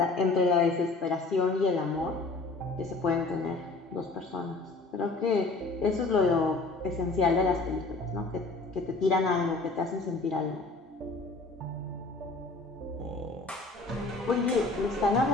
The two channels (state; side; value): quieter; right; 3.4 dB